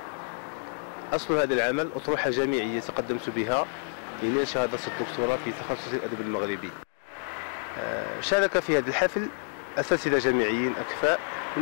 أصل هذا العمل أطروحة جامعية تقدمت بها لنيل شهادة الدكتوراه في تخصص الأدب المغربي. شارك في هذا الحفل أساتذة جامعيين أكفاء من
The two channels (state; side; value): silent; right; 58 dB below the other